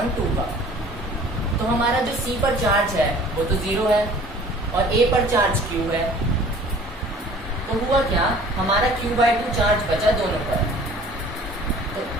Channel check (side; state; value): both; normal; correlation 0.49